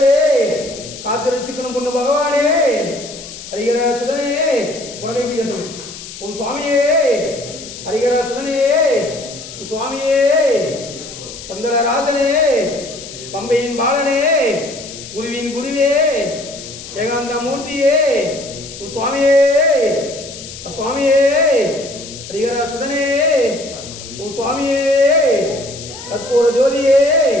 காத்திருச்சிக்கணும் பொண்ணு பகவானே ஹரிகரா சுதனே உலகை பிடிக்கணும். ஓம் சுவாமியே ஹரிகரா சுதனே ஓம் சுவாமியே பந்தலராசனே பம்பையின் பாலனே குருவின் குருவே ஏகாந்த மூர்த்தியே ஓம் சுவாமியே சுவாமியே ஹரிகரா சுதனே ஓம் சுவாமியே கற்பூர ஜோதியே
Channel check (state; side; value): noise; left; hiss, 13 dB below the sound